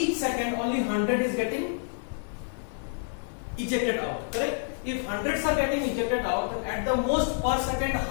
second only 100 is getting ejected out. Correct? If hundreds are getting ejected out, then at the most per second,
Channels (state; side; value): silent; right; digital silence